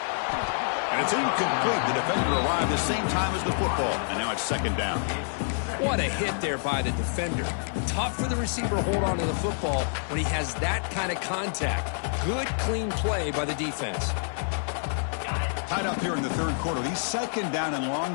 And it's incomplete. The defender arrived the same time as the football, and now it's 2nd down. What a hit there by the defender. Tough for the receiver to hold on to the football when he has that kind of contact. Good, clean play by the defense. Tied up here in the 3rd quarter. These 2nd down and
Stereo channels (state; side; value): silent; right; digital silence